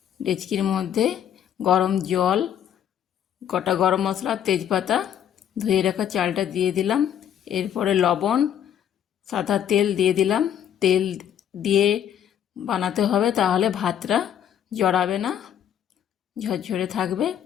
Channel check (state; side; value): quieter; right; 9.7 dB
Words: ডেচকির মধ্যে গরম জল, গোটা গরম মশলা, তেজপাতা, ধুয়ে রাখা চালটা দিয়ে দিলাম। এরপরে লবণ, সাদা তেল দিয়ে দিলাম। তেল দিয়ে বানাতে হবে, তাহলে ভাতটা জড়াবে না, ঝরঝরে থাকবে।